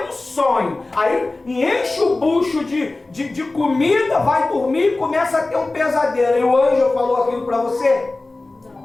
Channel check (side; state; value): right; quieter; 3.1 dB